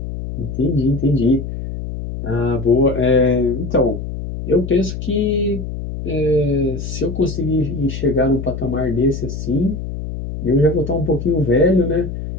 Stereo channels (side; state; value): left; noise; hum, 7 dB below the sound